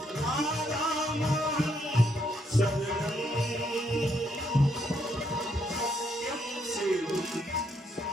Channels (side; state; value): both; normal; correlation 0.74